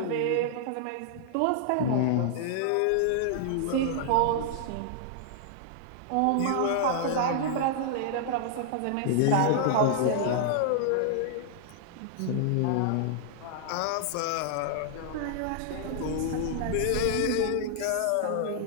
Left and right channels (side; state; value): both; different; correlation -0.01